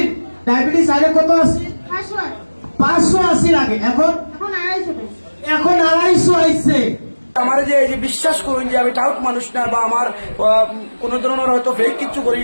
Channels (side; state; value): both; inverted; correlation -1.00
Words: ডায়াবেটিস আগে কত আছে 580 লাগে এখন 250 আইছে আমার যে এই যে বিশ্বাস করুন যে আমি টাউট মানুষ না বা আমার কোন ধরনের হয়তো ফেক কিছু করি